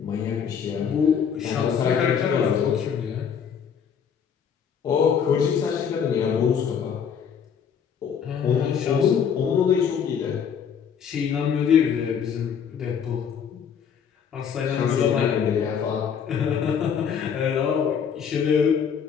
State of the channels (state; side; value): quieter; right; 7.4 dB